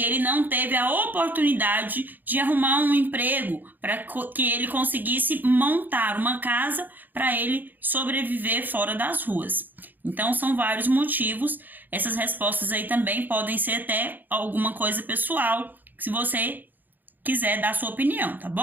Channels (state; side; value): late; left; 0.087 ms